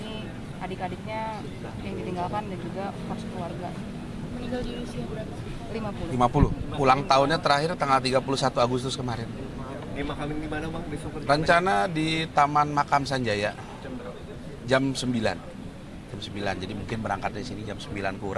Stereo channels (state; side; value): identical; both; correlation 1.00